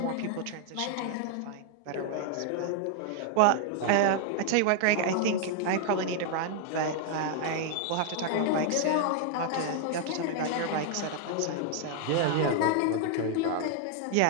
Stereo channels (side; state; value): both; different; correlation 0.00